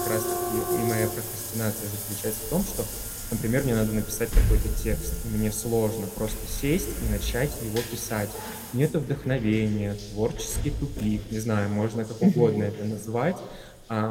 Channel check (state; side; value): identical; both; correlation 1.00